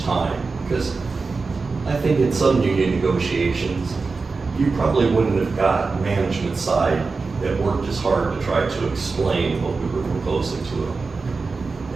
time, because I think in some union negotiations, you probably wouldn't have got management side that worked as hard to try to explain what we were proposing to them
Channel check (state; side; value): quieter; left; 4.2 dB